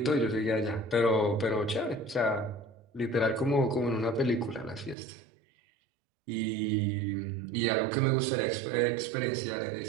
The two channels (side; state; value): left; drops out; at 5.0 s